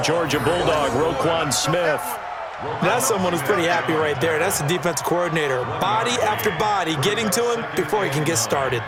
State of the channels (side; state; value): both; identical; correlation 1.00